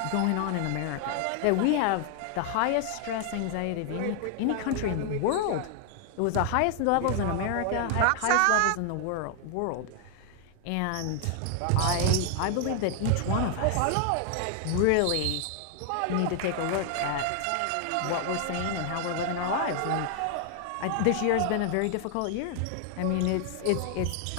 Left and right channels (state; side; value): different; both; correlation 0.00